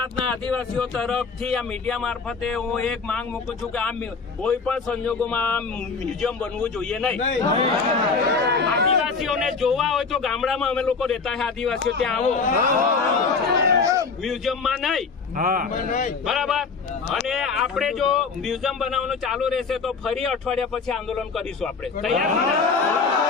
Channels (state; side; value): quieter; right; 4.8 dB